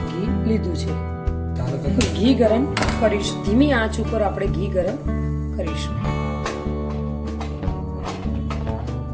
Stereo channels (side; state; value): both; identical; correlation 1.00